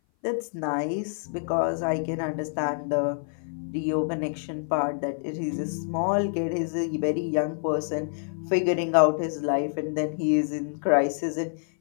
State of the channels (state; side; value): silent; right; 57 dB below the other